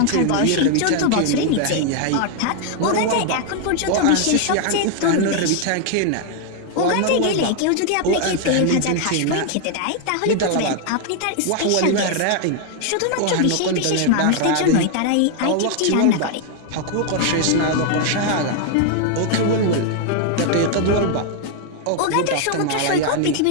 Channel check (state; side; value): different; both; correlation 0.00